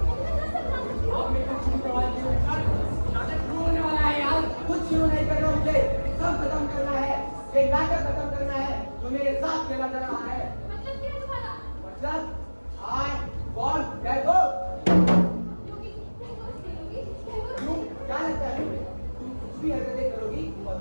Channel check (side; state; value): both; inverted; correlation -1.00